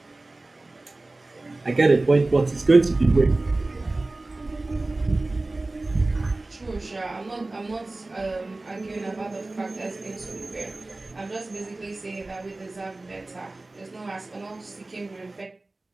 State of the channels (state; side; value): quieter; left; 3.0 dB